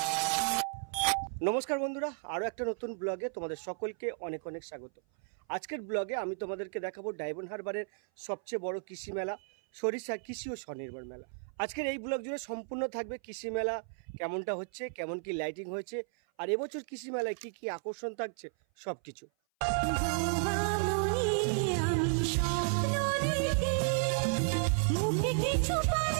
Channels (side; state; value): left; silent; 55 dB below the other